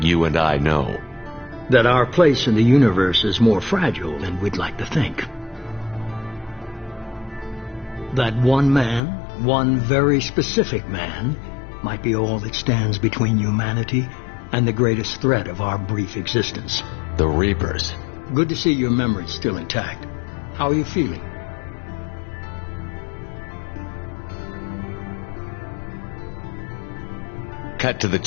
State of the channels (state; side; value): drops out; right; at 9.0 s